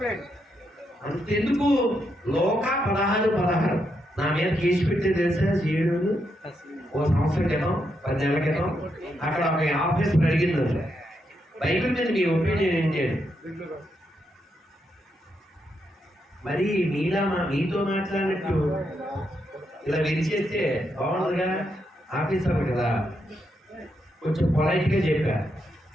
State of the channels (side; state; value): both; normal; correlation 0.81